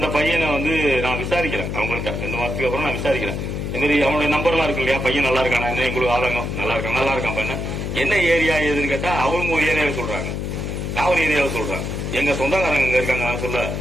பையனை நான் விசாரிக்கிறேன். அவங்கள்ட்ட 2 மாசத்துக்கு அப்புறம் நான் விசாரிக்கிறேன். இந்த மாதிரி அவனுடைய நம்பர்லாம் இருக்கு இல்லையா, பையன் நல்லா இருக்கானா, என்ன எங்களுக்கு ஆதங்கம், நல்லா இருக்கான் பையன். என்ன ஏரியா ஏதுன்னு கேட்டா அவங்க ஒரு ஏரியாவை சொல்றாங்க, நான் ஒரு ஏரியாவை சொல்றேன். எங்க சொந்தக்காரங்க அங்க இருக்காங்க. நான் சொல்ல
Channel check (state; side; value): noise; left; hum, 4 dB below the sound